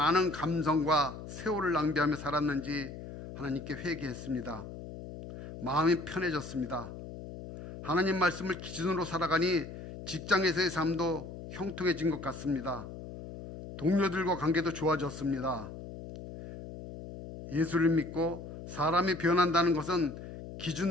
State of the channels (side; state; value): left; noise; hum, 11 dB below the sound